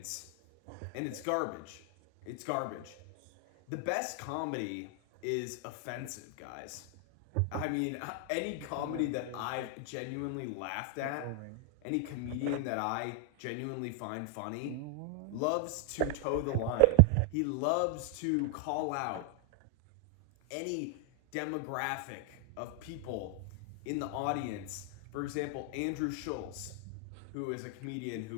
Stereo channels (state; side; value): different; both; correlation 0.00